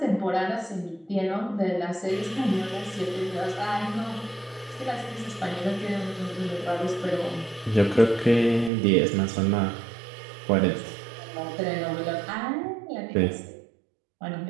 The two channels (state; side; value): drops out; left; at 8.7 s